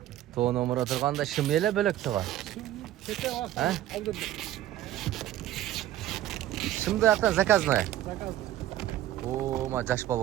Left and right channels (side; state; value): left; quieter; 13.3 dB